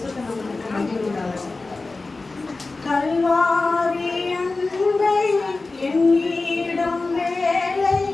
நாமத்துக்கு மகிமை உண்டாகட்டும். கல்வாரி அன்பை என்னிடம் வேலை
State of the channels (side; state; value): right; quieter; 3.5 dB